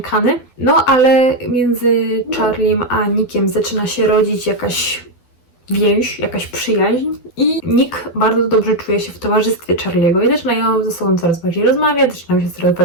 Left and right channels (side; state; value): right; late; 12 ms